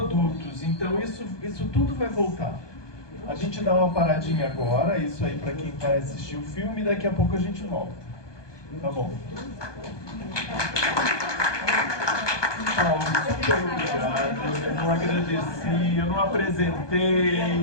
Então isso tudo vai voltar. A gente dá uma paradinha agora, isso aí para quem vai assistir o filme, e daqui a pouco a gente volta. Tá bom. Paulo, super obrigado. Eu não agradeci, eu não apresentei.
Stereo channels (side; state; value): right; late; 1.2 ms